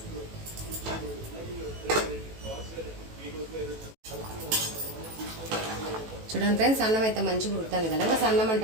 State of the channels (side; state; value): left; late; 18 ms